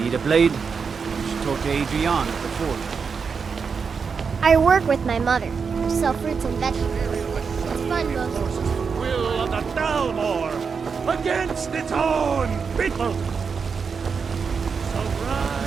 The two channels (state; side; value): quieter; left; 5.7 dB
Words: a blade? You should talk to Adrian at the forge. I work with my mother. We sell fruits and vegetables. It's fun, Moses. Will of the Dalmor against its own people. So